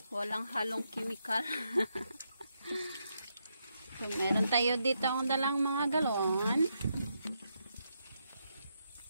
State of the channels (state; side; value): inverted; both; correlation -0.81